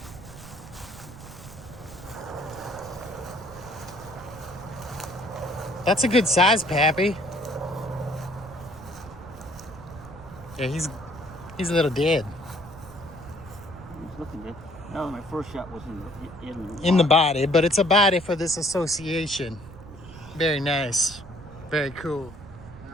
That's a good size, Pappy. Yeah, he's a little dead. He's looking good. No, my first shot was In the body, but it's a body for this association. Very nice. Very cool. Now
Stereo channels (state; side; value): noise; right; rumble, 16 dB below the sound